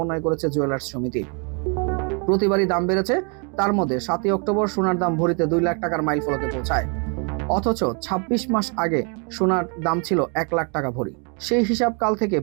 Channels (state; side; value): quieter; left; 37.6 dB